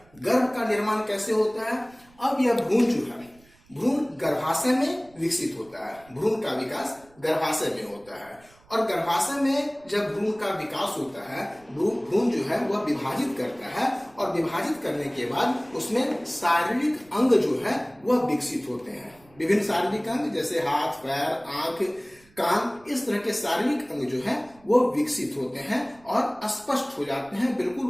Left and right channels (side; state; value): right; noise; rumble, 28 dB below the sound